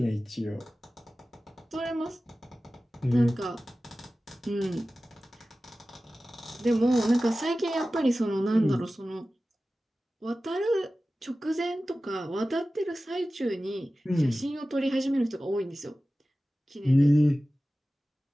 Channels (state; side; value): normal; both; correlation 0.96